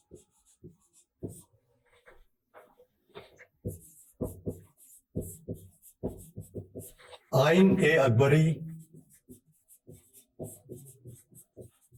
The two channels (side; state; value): both; identical; correlation 1.00